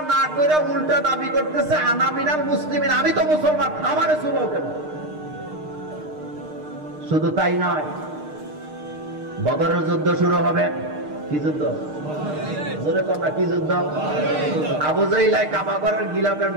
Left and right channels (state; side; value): late; left; 6.5 ms